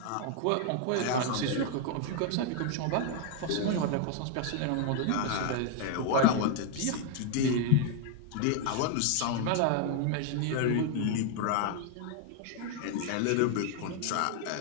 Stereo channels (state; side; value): different; both; correlation 0.00